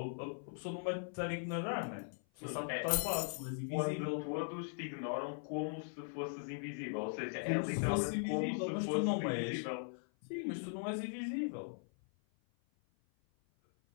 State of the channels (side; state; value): right; silent; 51 dB below the other